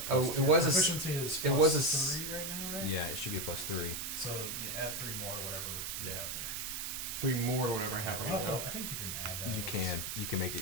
Oh, plus it was a proficiency is it plus was a 3 right now, right? yeah, it should be a +3. So you add 3 more to whatever you have there. 3 more to whatever I have right now. I think you can add that. You can make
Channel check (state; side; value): noise; right; hiss, 4 dB below the sound